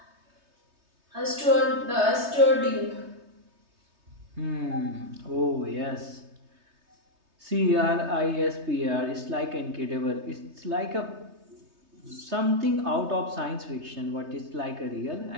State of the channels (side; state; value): left; late; 3.2 ms